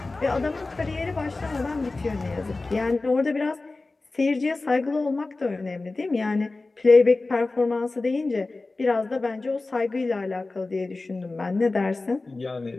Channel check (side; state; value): right; quieter; 3.4 dB